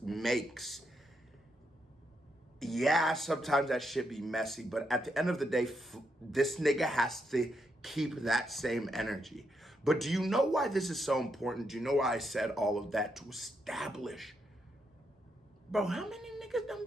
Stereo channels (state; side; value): normal; both; correlation 0.80